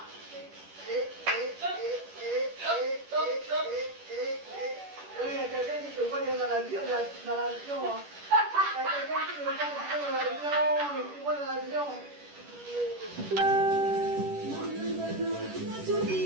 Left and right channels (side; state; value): left; late; 10 ms